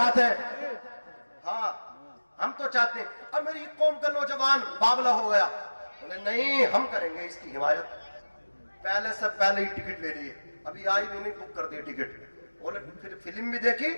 ہیں. ہاں, ہم تو چاہتے ہیں. اب میری قوم کا نوجوان باولا ہو گیا, بولے نہیں ہم کریں گے اس کی حمایت. پہلے سے پہلے ہی ٹکٹ لے لیے, ابھی آئی بھی نہیں, بک کر دی ٹکٹ. بولے پھر فلم بھی دیکھی,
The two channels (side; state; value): both; inverted; correlation -1.00